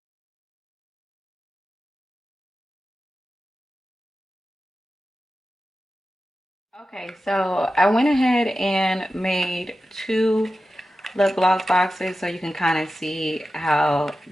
Okay, so I went ahead and made two lip gloss boxes so you can kind of see how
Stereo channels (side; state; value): both; normal; correlation 0.93